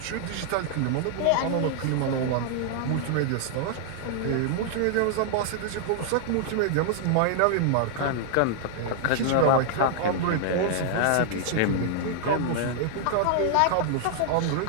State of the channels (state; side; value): different; both; correlation -0.01